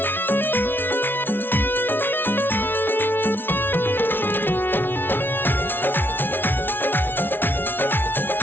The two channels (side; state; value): right; late; 0.10 ms